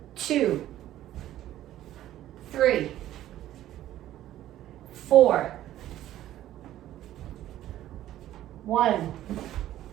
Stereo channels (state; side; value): quieter; left; 13.2 dB